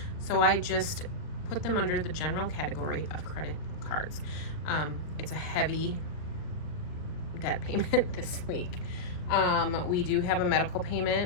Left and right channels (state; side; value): late; right; 39 ms